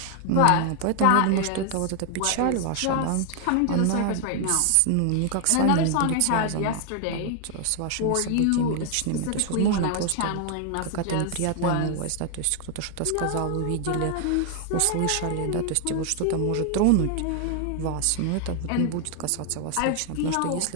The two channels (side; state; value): both; different; correlation 0.00